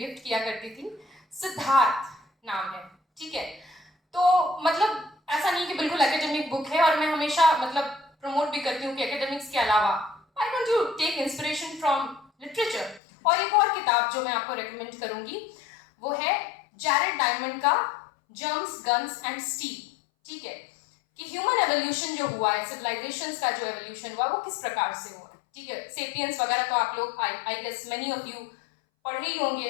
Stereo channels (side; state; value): right; drops out; at 13.0 s